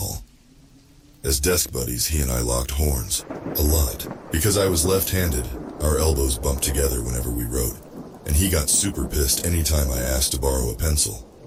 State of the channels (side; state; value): both; identical; correlation 1.00